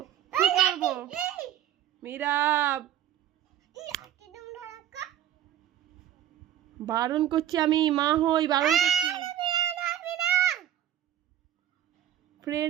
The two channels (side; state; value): left; quieter; 11.3 dB